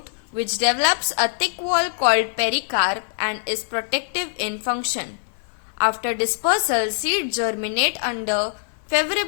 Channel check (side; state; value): right; silent; 59 dB below the other